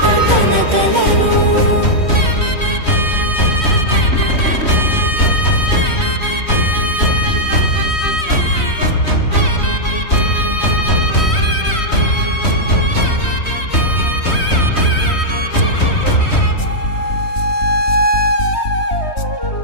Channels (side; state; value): right; late; 3.1 ms